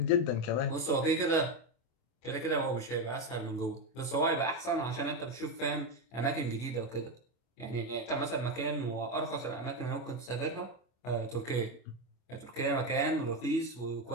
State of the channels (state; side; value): late; right; 25 ms